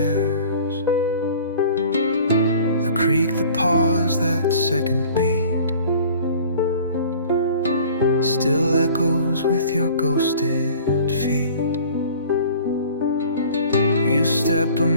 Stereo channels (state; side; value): inverted; both; correlation -0.47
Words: Creak, the pause, that second beat still echoes with your ghosted feet. You step a